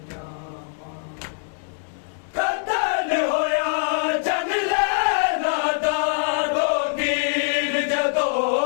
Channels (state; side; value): silent; right; digital silence